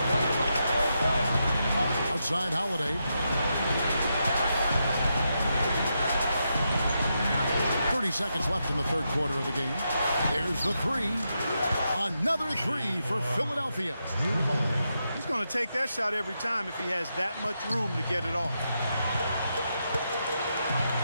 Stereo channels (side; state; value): both; inverted; correlation -0.84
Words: Outside Holiday. 30 seconds left in the third quarter of the game. There's the 3. Another 3 for Philadelphia. He's going to take that shot every time if he has that much room to get it off.